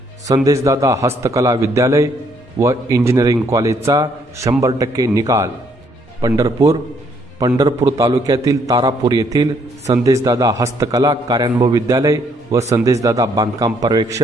संदेशदादा हस्तकला विद्यालय व इंजिनिअरिंग कॉलेजचा 100% निकाल। पंढरपूर तालुक्यातील तारापूर येथील संदेशदादा हस्तकला कार्यानुभव विद्यालय व संदेशदादा बांधकाम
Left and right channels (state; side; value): normal; both; correlation 0.69